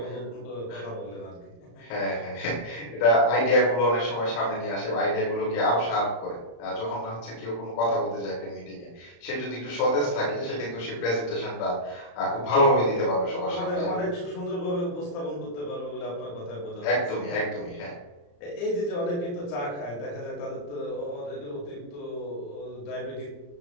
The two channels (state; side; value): late; right; 35 ms